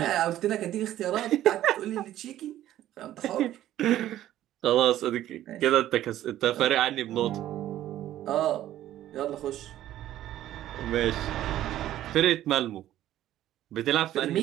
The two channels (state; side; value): quieter; left; 13.1 dB